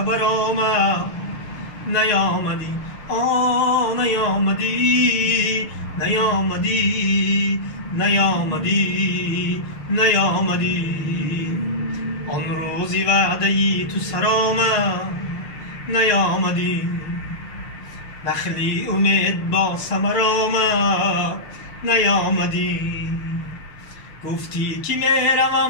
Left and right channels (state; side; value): late; right; 6.7 ms